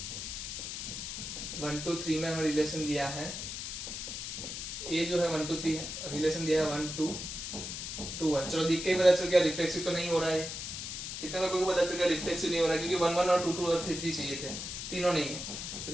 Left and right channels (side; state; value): left; noise; hiss, 6 dB below the sound